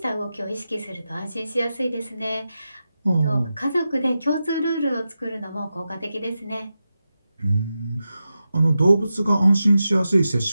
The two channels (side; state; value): both; inverted; correlation -0.91